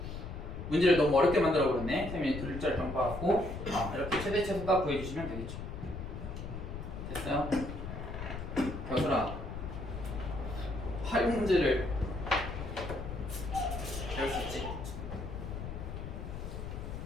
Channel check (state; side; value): noise; left; rumble, 7 dB below the sound